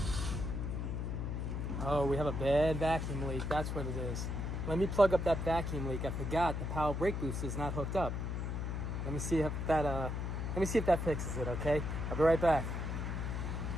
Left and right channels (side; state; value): left; noise; hum, 2 dB below the sound